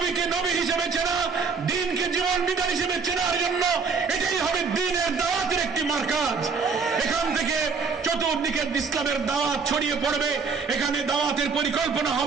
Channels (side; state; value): left; quieter; 5.2 dB